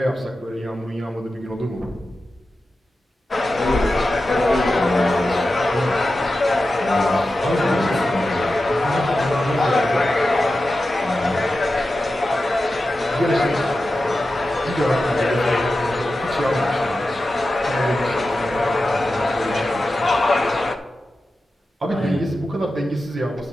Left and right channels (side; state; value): both; normal; correlation 0.92